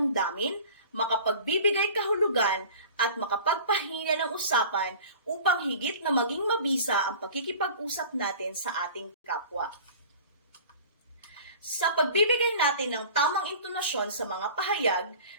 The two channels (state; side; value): inverted; both; correlation -0.42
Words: makapagbibigay kahulugan at makapagpahina ng usapan upang higit na maging mabisa ang pakikipag-usap natin sa ating kapwa. Sa pagbibigay natin ng tamang intonasyon sa mga pahayag,